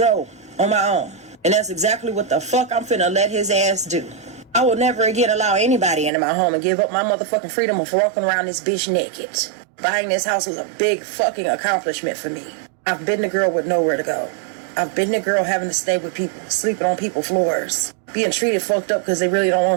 on my own. And that's exactly what the fuck I'm finna let his ass do. I will never again allow anybody into my home and give up my motherfucking freedom of walking around this bitch naked. Buying this house was a big fucking accomplishment for me. I've been the girl with nowhere to go. I've been the girl having to stay with people, sleeping on people's floors, being treated fucked up because they really don't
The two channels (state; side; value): drops out; left; at 6.1 s